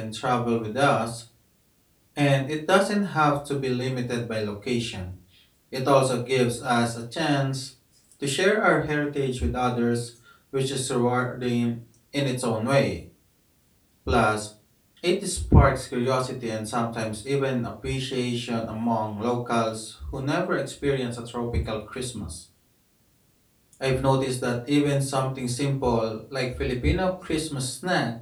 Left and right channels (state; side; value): identical; both; correlation 1.00